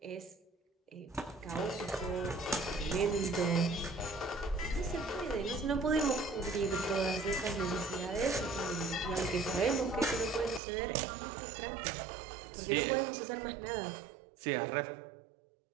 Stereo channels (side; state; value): left; drops out; at 10.6 s